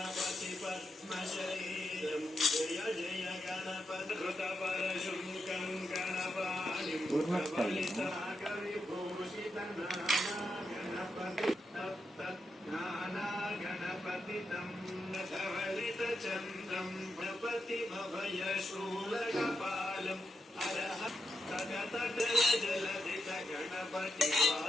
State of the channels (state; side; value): normal; both; correlation 0.85